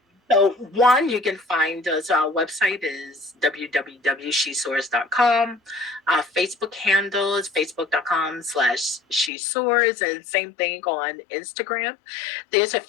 So one, you can find us. Our website is www.shesoars.com. Our Facebook handle is facebook.com/shesoars, and same thing on Instagram. There's a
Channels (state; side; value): drops out; right; at 9.3 s